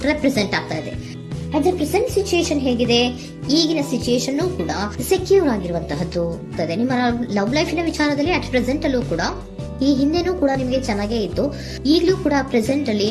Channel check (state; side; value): identical; both; correlation 1.00